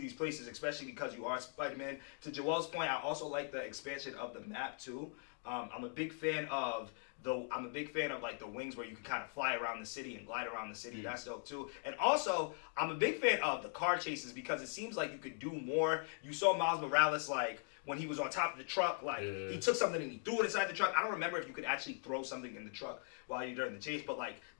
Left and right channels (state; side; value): silent; right; 51 dB below the other